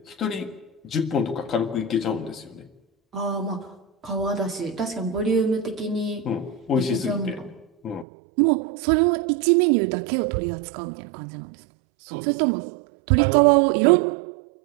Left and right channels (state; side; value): drops out; left; at 8.1 s